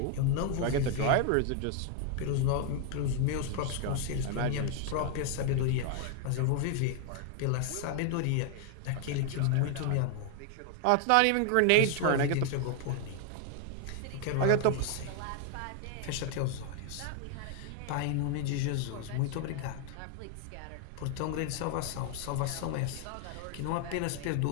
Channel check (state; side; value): different; both; correlation 0.00